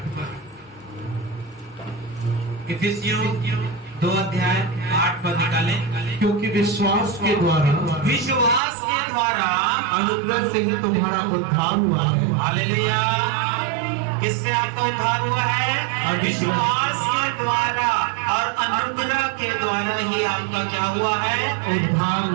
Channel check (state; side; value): drops out; left; at 8.6 s